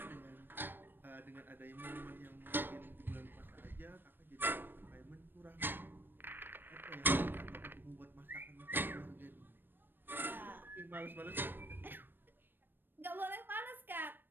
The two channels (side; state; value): left; late; 0.096 ms